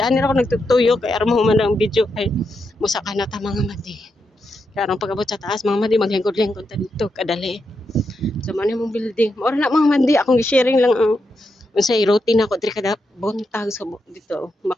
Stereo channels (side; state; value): both; normal; correlation 0.84